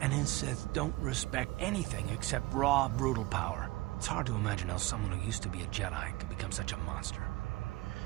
and his Sith don't respect anything except raw, brutal power. It's hard to imagine how someone who used to be a Jedi could become such a monster.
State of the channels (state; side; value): quieter; left; 20.2 dB